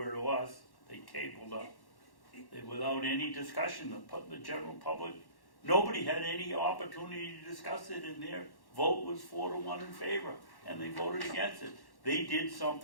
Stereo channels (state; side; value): late; right; 1.1 ms